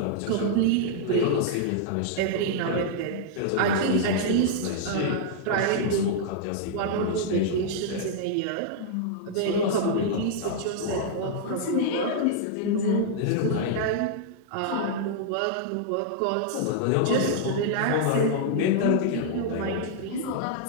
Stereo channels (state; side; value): different; both; correlation -0.01